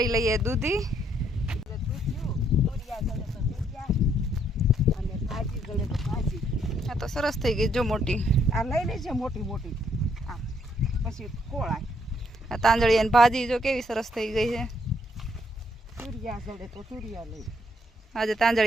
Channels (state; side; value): normal; both; correlation 0.71